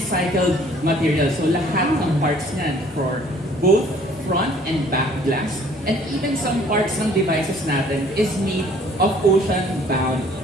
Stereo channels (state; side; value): normal; both; correlation 0.56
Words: material. So lahat ng parts niyan for both front and back glass. And even some parts ng devices natin is made of ocean-bound